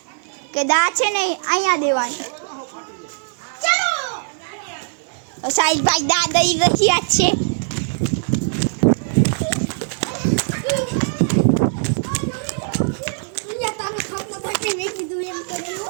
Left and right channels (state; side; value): silent; left; 65 dB below the other